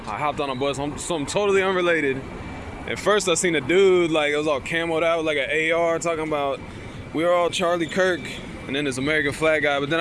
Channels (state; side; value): identical; both; correlation 1.00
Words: I hopped on a bus, something totally unrelated. At first I seen a dude, like it was all camoed out with like an AR talking about we are all Charlie Kirk and then this American flag guy. But then